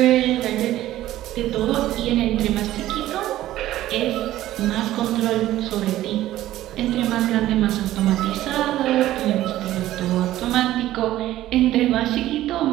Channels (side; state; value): left; quieter; 14.4 dB